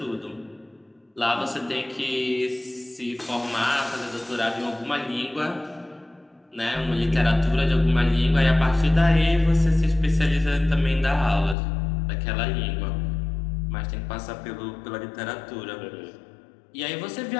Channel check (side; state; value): right; drops out; at 11.6 s